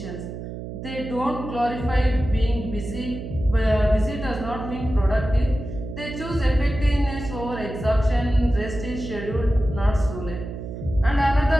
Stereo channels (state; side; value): noise; right; hum, 9 dB below the sound